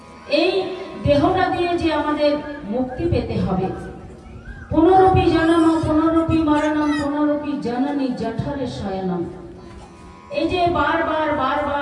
এই দেহটা দিয়ে যে আমাদের মুক্তি পেতে হবে, পুনরপি জনম পুনরপি মরণম পুনরপি জননী জঠরে শয়নম, এই যে বারবার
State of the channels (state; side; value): identical; both; correlation 1.00